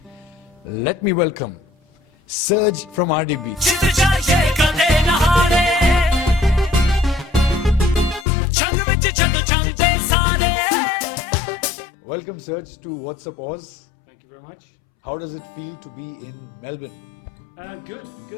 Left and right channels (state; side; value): drops out; right; at 8.2 s